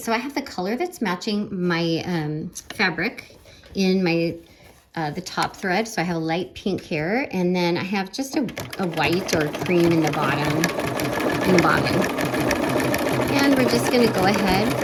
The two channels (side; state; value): both; identical; correlation 1.00